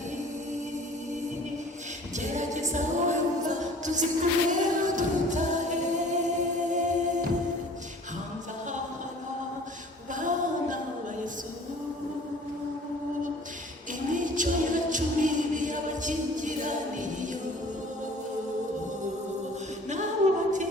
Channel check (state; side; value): normal; both; correlation 0.49